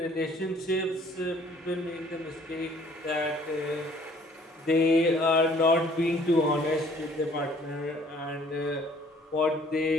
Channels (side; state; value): both; normal; correlation 0.57